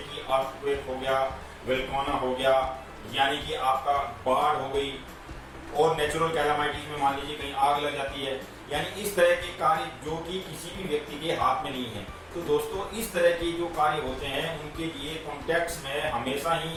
अर्थक्वेक हो गया, वोल्केनो हो गया, यानी कि आपका बाढ़ हो गई, और नेचुरल कैलामिटीज में मान लीजिए कहीं आग लग जाती है, यानी इस तरह के कार्य जो कि किसी भी व्यक्ति के हाथ में नहीं है। तो दोस्तों, इस तरह के जो कार्य होते हैं उनके लिए कॉन्ट्रैक्ट्स में हमेशा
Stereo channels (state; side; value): identical; both; correlation 1.00